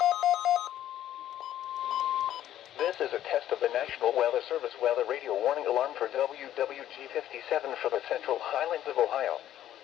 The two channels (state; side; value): quieter; right; 12.0 dB